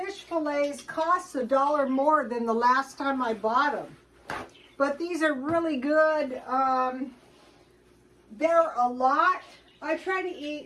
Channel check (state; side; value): identical; both; correlation 1.00